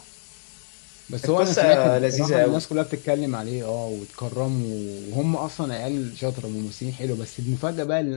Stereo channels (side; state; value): right; silent; digital silence